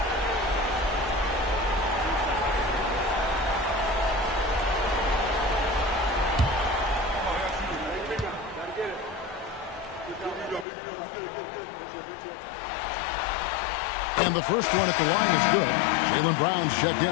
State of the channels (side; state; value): right; drops out; at 10.7 s